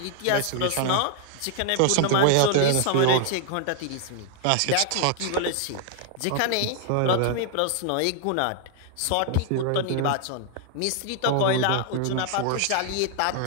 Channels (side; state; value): both; different; correlation 0.00